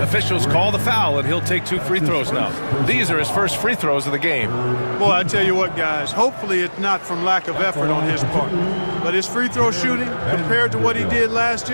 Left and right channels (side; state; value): both; inverted; correlation -1.00